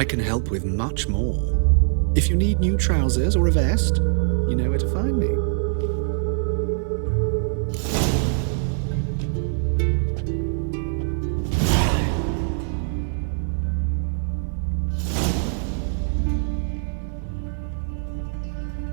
can help with much more. If you need new trousers or a vest, you know where to find me.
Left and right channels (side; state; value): left; silent; 61 dB below the other